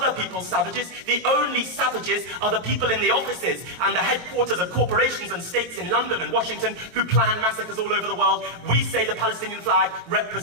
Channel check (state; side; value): late; left; 23 ms